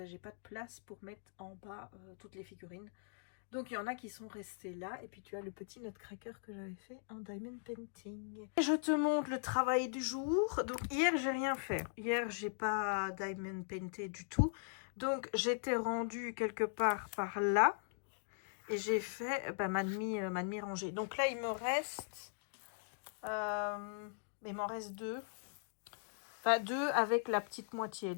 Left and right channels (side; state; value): right; silent; digital silence